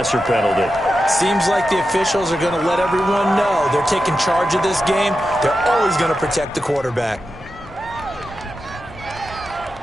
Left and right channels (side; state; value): left; noise; rumble, 21 dB below the sound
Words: penalty. Seems like the officials are going to let everyone know they're taking charge of this game. They're always going to protect the quarterback.